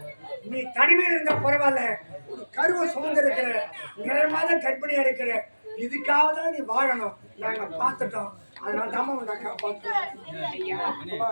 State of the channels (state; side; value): inverted; both; correlation -1.00